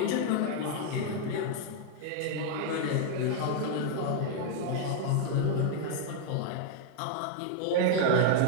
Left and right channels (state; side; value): different; both; correlation 0.00